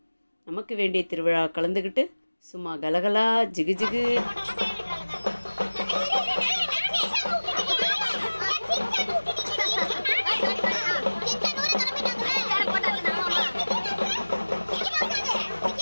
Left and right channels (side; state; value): both; inverted; correlation -1.00